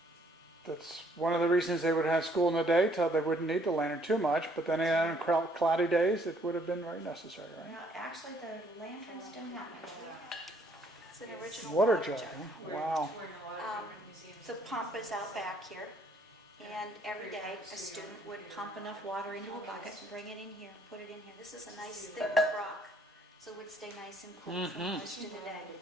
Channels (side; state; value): both; normal; correlation 0.65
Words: That's one of the reasons they would have school in the day, so they wouldn't need the lantern too much, but then on cloudy days, it would have been very necessary, right? Now, actually, the lanterns don't have much. It's an original Water jug, huh? We're Wow. touring a lot of different museums. The pump is out back here, and every day a student would pump enough water into a bucket, bring it in here, put it in here. This is a nice thick rock, so it would stay nice and cool for most of the day.